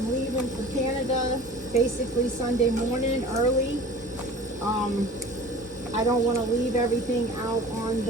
leaving for Canada basically Sunday morning early, I don't want to leave everything out on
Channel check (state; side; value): normal; both; correlation 0.42